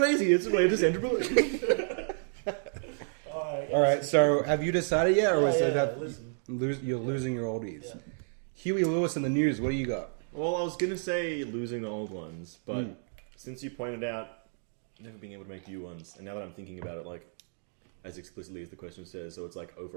It's related to Sandra Bullock. All right, so have you decided yet, or is it that listen. you're losing your oldies? Yeah. Huey Lewis in the news. What do you got? Well, I was gonna say losing the old ones, but since you pointed out never being able to make new ones, and now that I'm thinking about it, like as explicitly as the question says, so it's like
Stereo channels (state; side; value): silent; left; digital silence